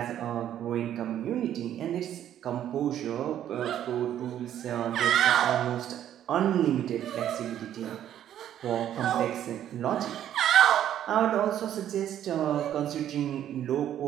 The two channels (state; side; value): quieter; left; 10.9 dB